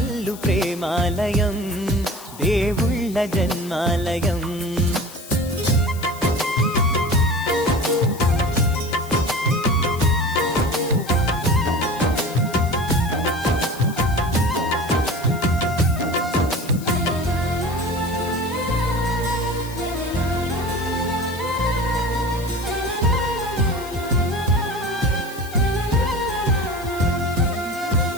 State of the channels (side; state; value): left; noise; hiss, 17 dB below the sound